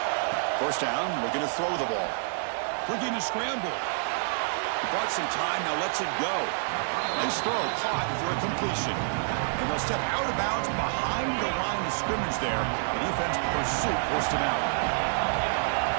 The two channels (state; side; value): silent; left; digital silence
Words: First down, looking to throw the ball. Looking to scramble. He bought some time, now lets it go. Nice throw, caught for a completion. And they'll step out of bounds behind the line of scrimmage there. The defense pursuit forced him out.